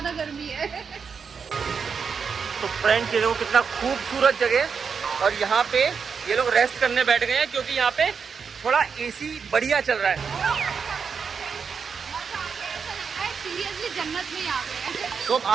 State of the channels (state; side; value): quieter; left; 6.0 dB